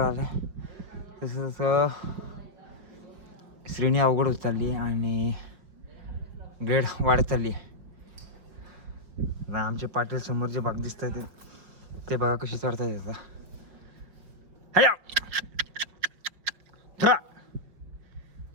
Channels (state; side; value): late; left; 5.3 ms